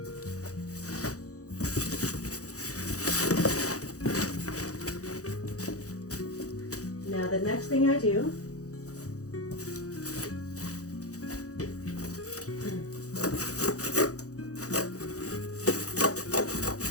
Now the next thing I do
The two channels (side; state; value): right; late; 0.66 ms